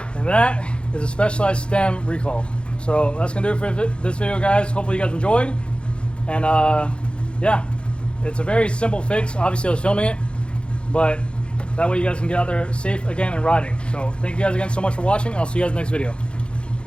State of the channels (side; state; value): right; late; 0.056 ms